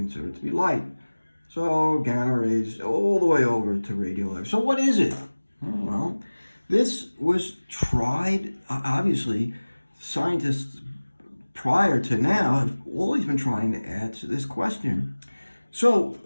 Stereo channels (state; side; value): inverted; both; correlation -1.00